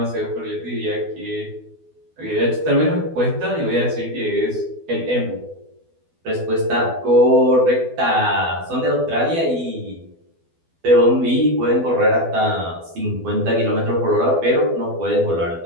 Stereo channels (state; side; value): late; left; 12 ms